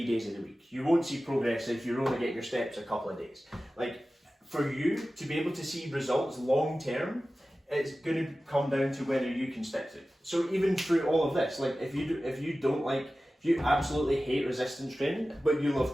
days of the week. You won't see progress if you're only getting your steps a couple of days. Like, for you to be able to see results long term, it's going to come down to whether you can stick to it. So even through all of this, like, if you absolutely hate resistance training, but you love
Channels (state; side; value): normal; both; correlation 0.95